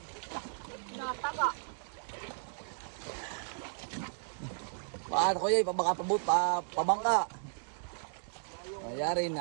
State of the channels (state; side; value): silent; left; digital silence